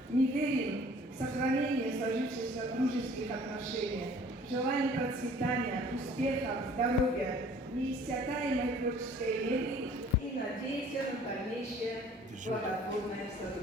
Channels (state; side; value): normal; both; correlation 0.52